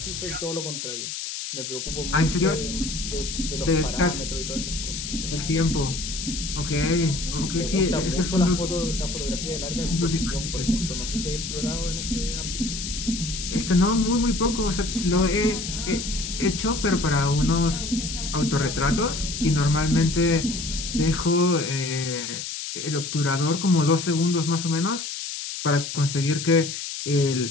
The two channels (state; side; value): noise; left; hiss, 6 dB below the sound